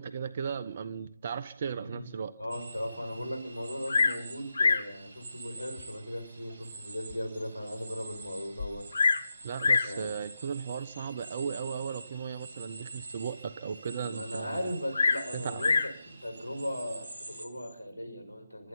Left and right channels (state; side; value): inverted; both; correlation -0.87